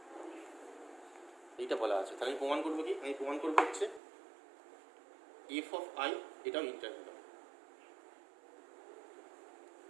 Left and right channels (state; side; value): drops out; left; at 4.0 s